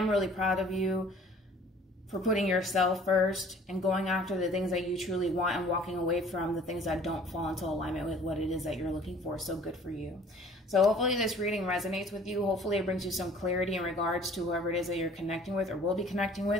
really proud of you for putting yourself first and going after the things that you truly want and walking away from the things that don't fall into alignment with what it is that you're looking for. So good for you. So hopefully this reading resonates with you. Hopefully it brings you some clarity in regards to whoever it is that you're connecting with or will be connecting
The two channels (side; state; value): both; normal; correlation 0.52